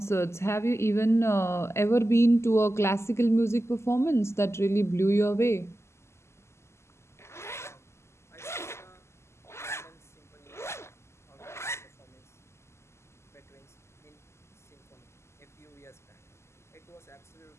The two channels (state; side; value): late; right; 0.13 ms